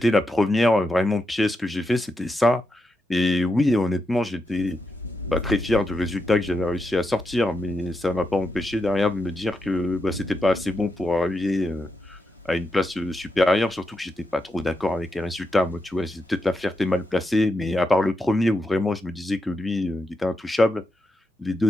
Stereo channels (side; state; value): both; normal; correlation 0.85